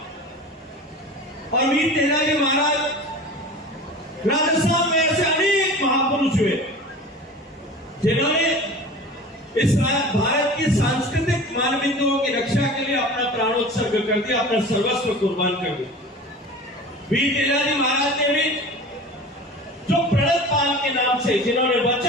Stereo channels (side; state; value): both; normal; correlation 0.37